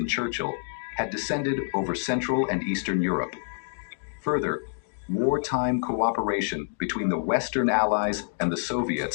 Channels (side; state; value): right; silent; digital silence